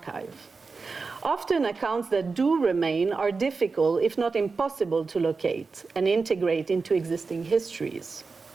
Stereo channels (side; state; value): left; quieter; 4.4 dB